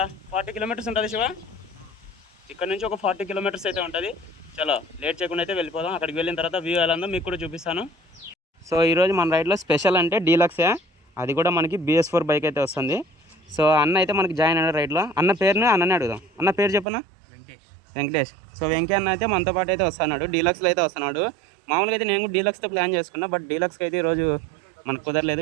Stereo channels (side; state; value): left; drops out; at 16.9 s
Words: 40 కిలోమీటర్స్ ఉంటుంది శివ. ఇక్కడ నుంచి ఒక 40 కిలోమీటర్స్ అయితే ఉంటుంది. చలో లేట్ చేయకుండా అయితే వెళ్ళిపోదాం. అక్కడికి వెళ్ళిన తర్వాత వ్యూ ఎలా ఉందో మీకు కూడా చూపిస్తాను. సో ఈరోజు మన రైడ్లో స్పెషల్ అంటే డీలక్సే, అది కూడా మనకి BS4 బైక్ అయితే వస్తుంది. సో అన్న అయితే మనకి జాయిన్ అయిన రైడ్లో. అన్న పేరుని అన్ననే అడుగుదాం. అన్న పేరు చెప్పనా? వెంకటేష్. సో వెంకీ అన్న అయితే మనతో పాటు అయితే వస్తున్నాడు, డీలక్స్లో అయితే వస్తున్నాడు. మామూలుగా అయితే నేను కూడా డీలక్స్తో ప్లాన్ చేసుకున్నా, బట్ డీలక్స్కి అయితే ఈరోజు మనకు